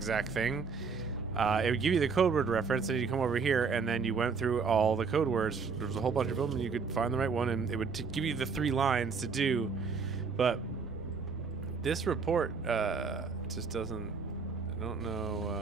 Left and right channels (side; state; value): left; quieter; 5.2 dB